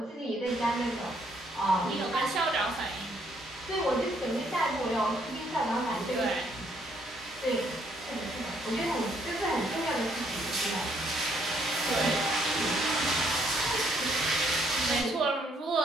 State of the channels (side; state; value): both; normal; correlation 0.69